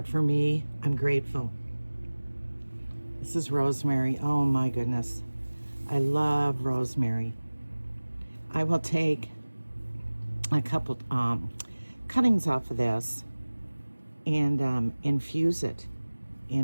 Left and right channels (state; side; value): inverted; both; correlation -1.00